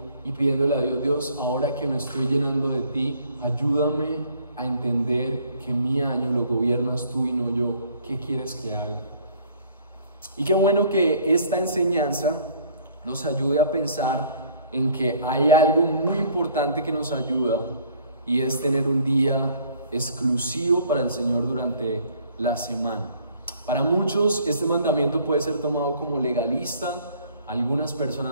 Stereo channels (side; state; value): both; inverted; correlation -0.58